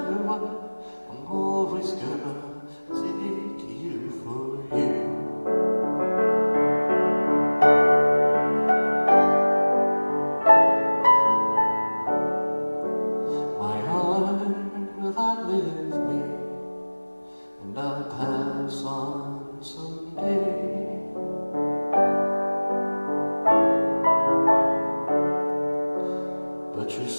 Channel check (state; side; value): inverted; both; correlation -1.00